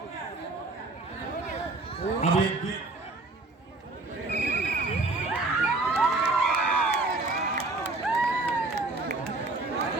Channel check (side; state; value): left; quieter; 3.2 dB